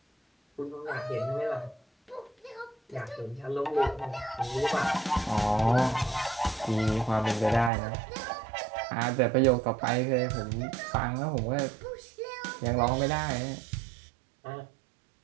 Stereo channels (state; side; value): drops out; left; at 7.7 s